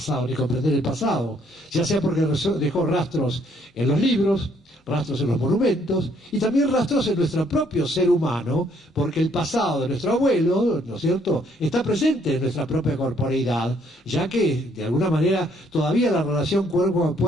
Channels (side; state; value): both; normal; correlation 0.67